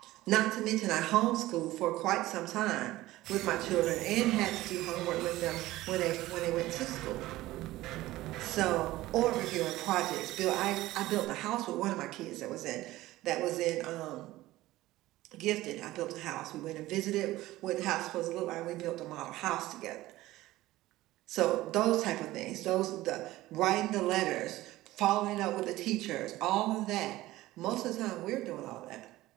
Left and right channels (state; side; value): quieter; left; 17.0 dB